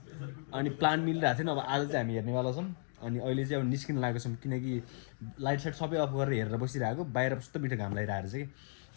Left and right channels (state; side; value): silent; right; 55 dB below the other